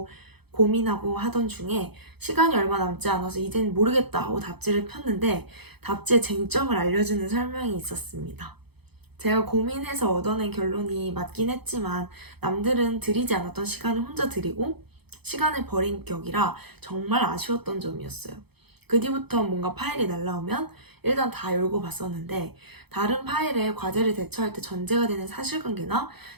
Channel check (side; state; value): left; late; 0.98 ms